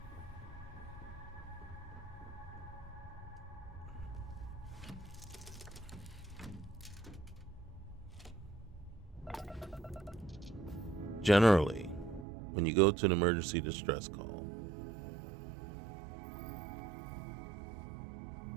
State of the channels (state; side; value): drops out; left; at 12.2 s